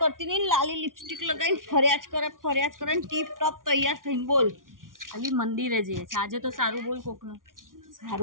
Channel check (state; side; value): late; left; 0.89 ms